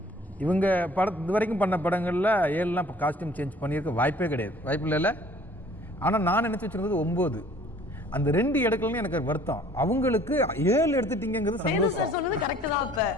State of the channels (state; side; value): normal; both; correlation 0.54